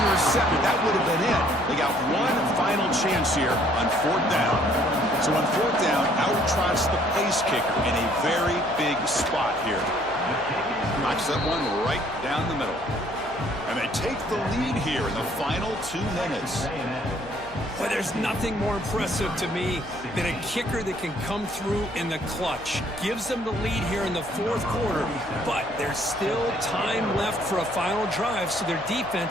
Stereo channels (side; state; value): left; noise; hum, 22 dB below the sound